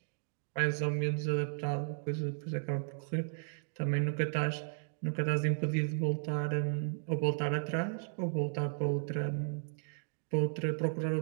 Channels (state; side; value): silent; left; digital silence